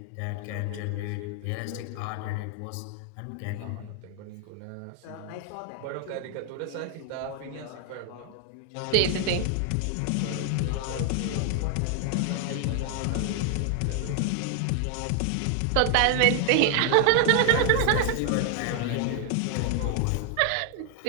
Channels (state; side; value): different; both; correlation 0.00